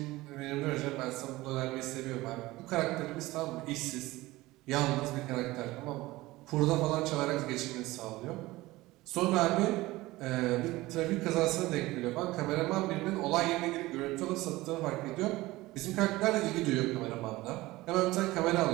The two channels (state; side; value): quieter; left; 19.0 dB